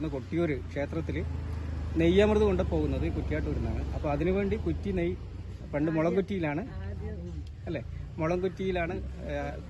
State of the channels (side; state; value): both; identical; correlation 1.00